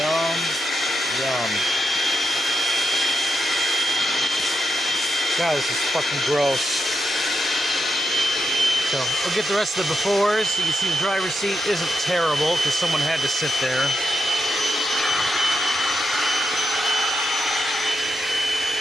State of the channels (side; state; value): both; normal; correlation 0.85